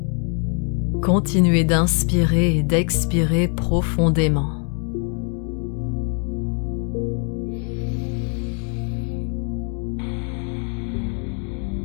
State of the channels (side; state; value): right; quieter; 39.8 dB